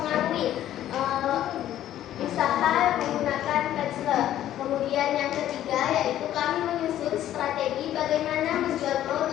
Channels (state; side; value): quieter; right; 12.3 dB